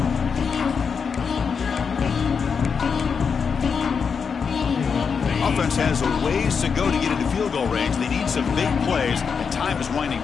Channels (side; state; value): right; quieter; 6.0 dB